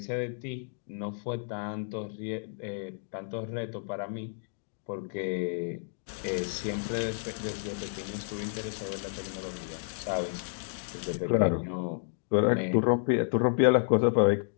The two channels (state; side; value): silent; right; digital silence